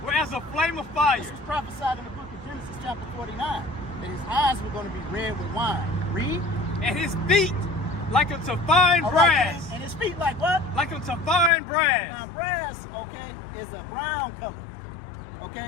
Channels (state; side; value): drops out; right; at 11.5 s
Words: were as a flame of fire. This was prophesied in the book of Genesis chapter 49. That his eyes were going to be red with wine. Read. And his feet like unto fine brass. And his feet like what? Like unto fine brass. Now brass, okay, is a brown color.